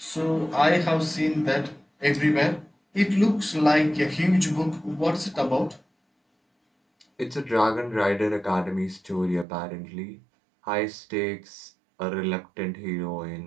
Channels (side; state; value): left; drops out; at 9.5 s